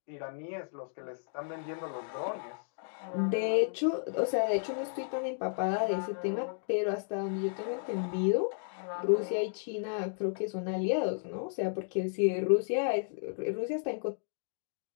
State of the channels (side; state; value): right; silent; digital silence